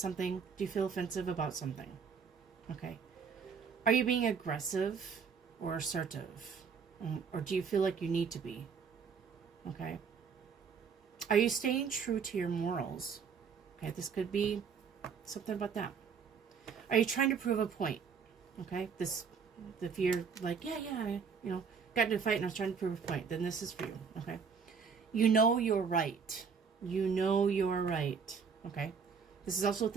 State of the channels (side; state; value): left; quieter; 6.0 dB